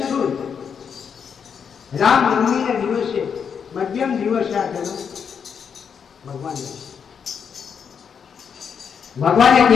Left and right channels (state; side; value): quieter; right; 7.0 dB